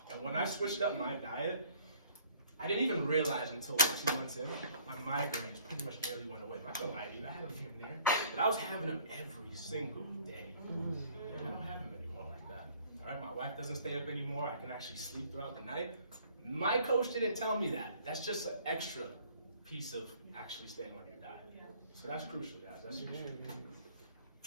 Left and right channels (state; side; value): inverted; both; correlation -0.57